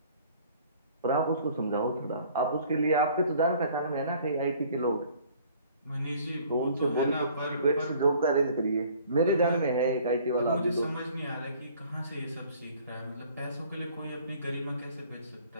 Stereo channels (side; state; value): both; inverted; correlation -0.54